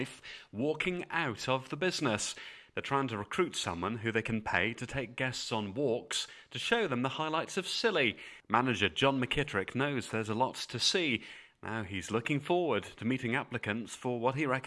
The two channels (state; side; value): identical; both; correlation 1.00